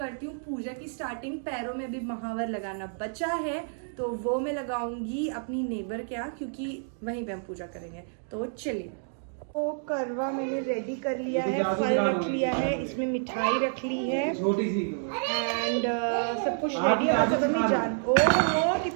हूँ पूजा की स्टार्टिंग। पैरों में भी महावर लगाना बचा है तो वो मैं लगाऊंगी अपनी नेबर के यहाँ क्योंकि वहीं पे हम पूजा करेंगे। तो चलिए, वो करवा मैंने रेडी कर लिया है, फल रख लिया है, इसमें मिठाई रख ली है छोटी सी एंड सब कुछ रेडी है। बस अब हमें जान, ओह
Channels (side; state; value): left; silent; digital silence